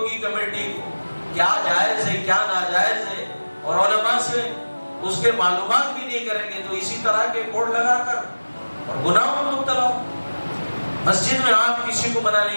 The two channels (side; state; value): both; inverted; correlation -1.00